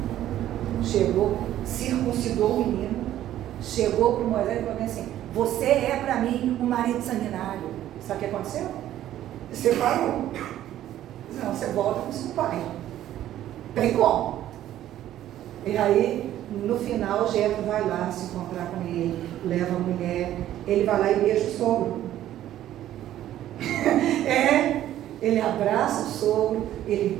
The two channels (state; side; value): quieter; left; 12.6 dB